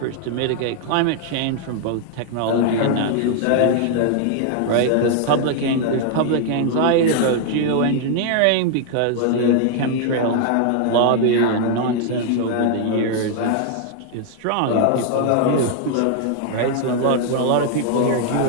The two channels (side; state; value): both; different; correlation 0.00